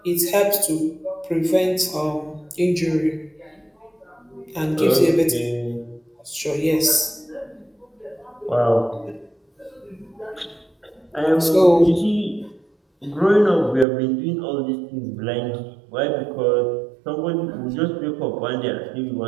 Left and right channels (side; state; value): left; drops out; at 13.9 s